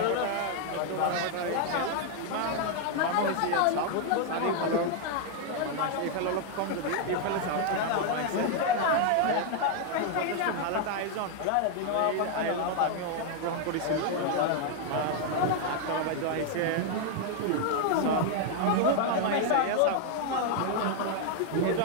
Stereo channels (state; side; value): different; both; correlation 0.00